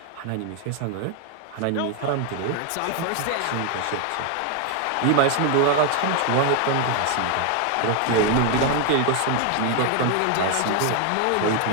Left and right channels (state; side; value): different; both; correlation 0.01